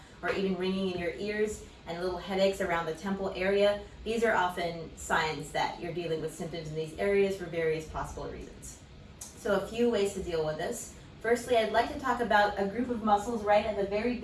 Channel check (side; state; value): both; identical; correlation 1.00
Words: or even ringing in your ears and little headaches around the temple area, these are often signs that you're dealing with symptoms in these areas for various possible reasons. So a few ways to deal with this. Firstly, I'd like to talk about a group of muscles right at the very